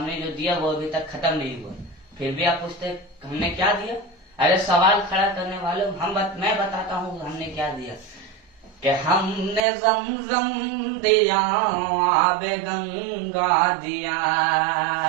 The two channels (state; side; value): drops out; left; at 9.6 s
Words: जो दिया वो अभी तक खत्म नहीं हुआ, फिर भी आप पूछते हमने क्या दिया। अरे सवाल खड़ा करने वालों मैं बताता हूँ हमने क्या दिया। कि हमने ज़मज़म दिया, आबे गंगा दिया,